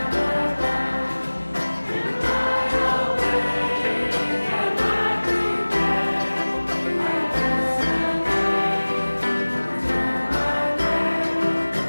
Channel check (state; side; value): inverted; both; correlation -1.00